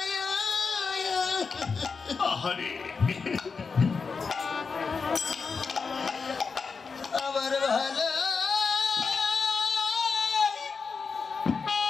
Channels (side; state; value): right; quieter; 5.0 dB